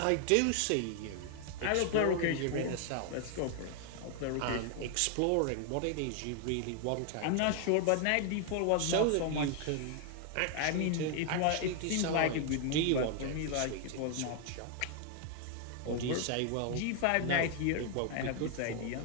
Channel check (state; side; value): different; both; correlation 0.00